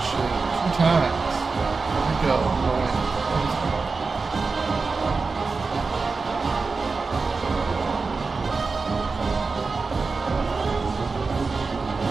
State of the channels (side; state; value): left; quieter; 4.3 dB